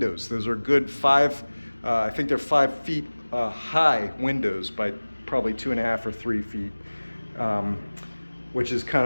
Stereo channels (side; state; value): both; inverted; correlation -1.00